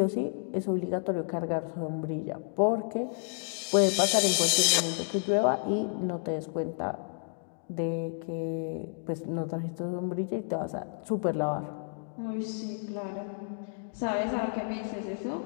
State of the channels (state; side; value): silent; right; digital silence